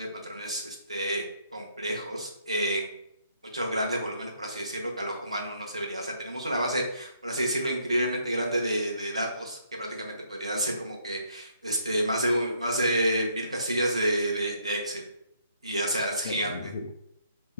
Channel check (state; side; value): inverted; both; correlation -0.68